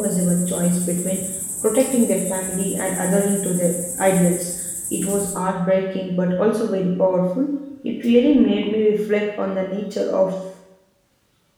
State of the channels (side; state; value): both; identical; correlation 1.00